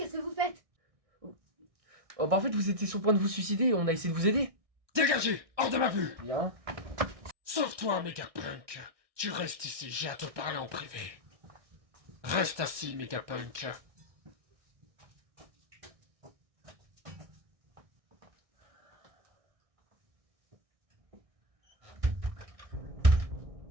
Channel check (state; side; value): late; left; 1.6 ms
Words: que vous faites? Oh bah en fait vous étiez sur le point de vous suicider et on a essayé de vous aider. Dégagez, hors de ma vue! Bien. Sauve-toi, Megapunk. Tu restes ici, j'ai à te parler en privé. Reste assis, Megapunk.